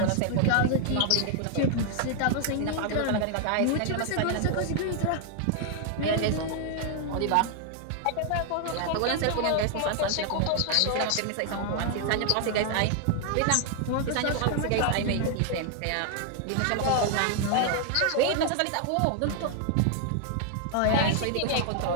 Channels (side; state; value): both; different; correlation 0.00